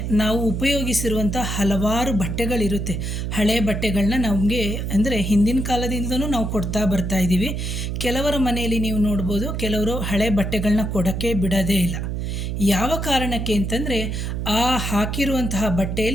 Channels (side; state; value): right; noise; hum, 3 dB below the sound